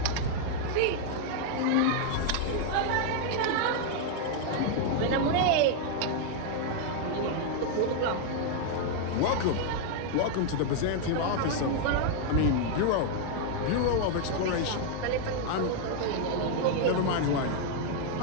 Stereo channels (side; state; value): both; different; correlation 0.00